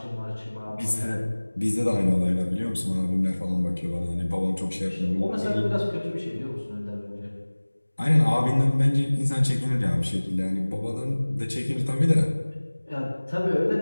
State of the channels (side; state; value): both; inverted; correlation -1.00